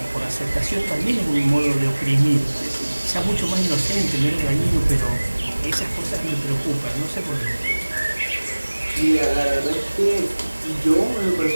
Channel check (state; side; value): inverted; both; correlation -1.00